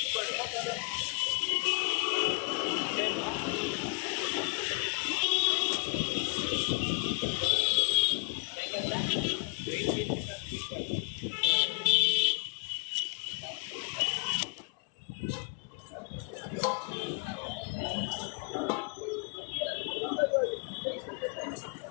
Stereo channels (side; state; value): right; quieter; 34.7 dB